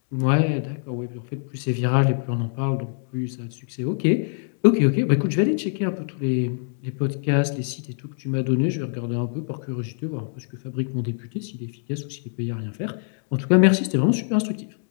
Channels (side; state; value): right; silent; digital silence